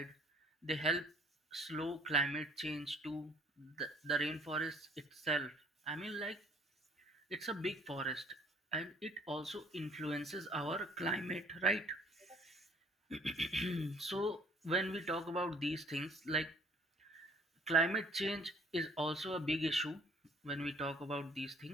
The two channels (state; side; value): normal; both; correlation 0.58